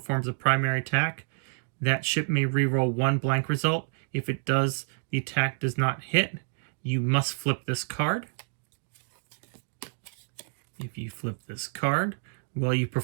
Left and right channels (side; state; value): left; silent; digital silence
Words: a primary attack, that ship may reroll 1 blank result. If it does, the attack does not hit. You must flip this card. If you flip this card, while you